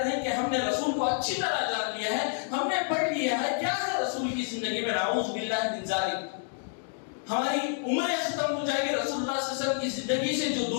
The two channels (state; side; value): silent; right; 59 dB below the other